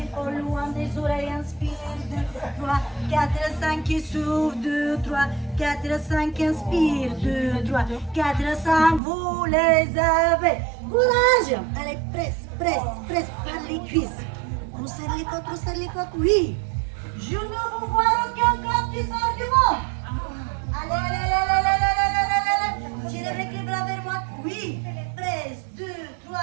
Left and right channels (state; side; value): drops out; left; at 9.0 s